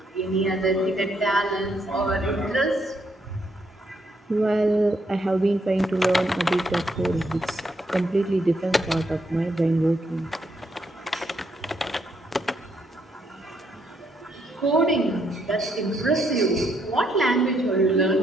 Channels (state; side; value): normal; both; correlation 0.75